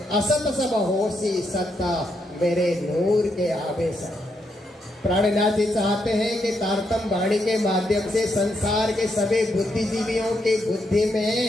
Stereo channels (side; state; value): both; normal; correlation 0.79